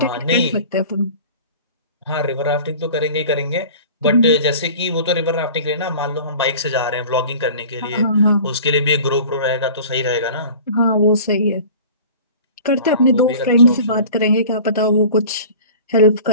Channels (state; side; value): inverted; both; correlation -0.42